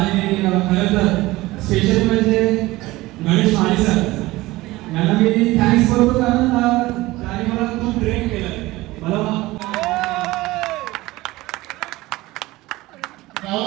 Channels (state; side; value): quieter; left; 19.2 dB